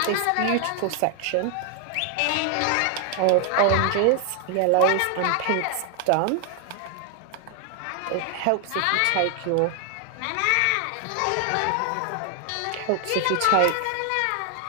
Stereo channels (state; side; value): different; both; correlation 0.00